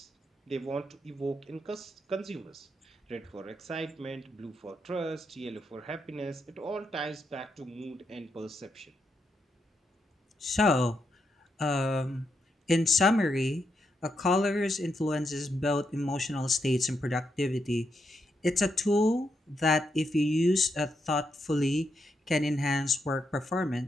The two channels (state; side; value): normal; both; correlation 0.82